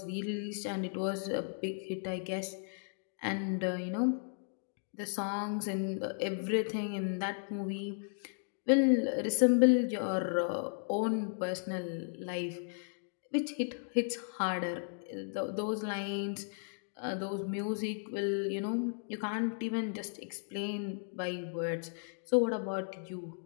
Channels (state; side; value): silent; right; digital silence